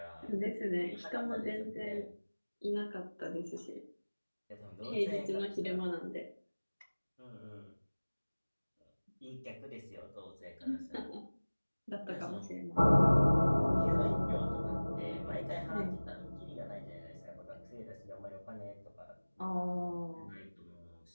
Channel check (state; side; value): inverted; both; correlation -1.00